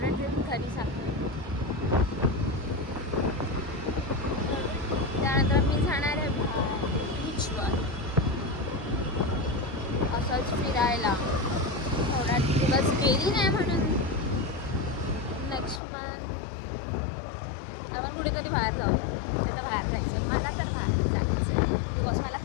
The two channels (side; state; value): right; drops out; at 15.8 s